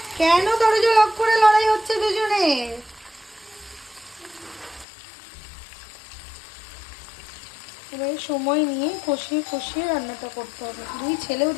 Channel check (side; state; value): right; drops out; at 4.9 s